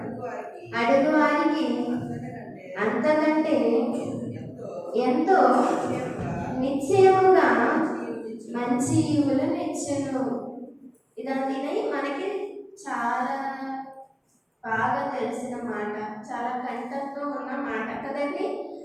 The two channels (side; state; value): both; identical; correlation 1.00